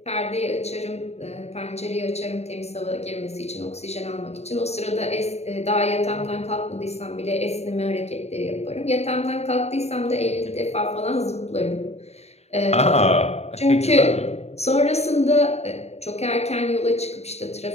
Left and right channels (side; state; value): right; late; 0.31 ms